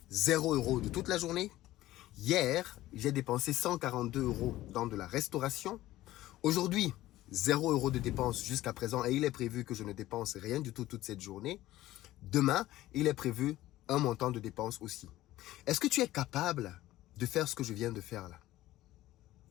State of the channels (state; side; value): quieter; right; 15.7 dB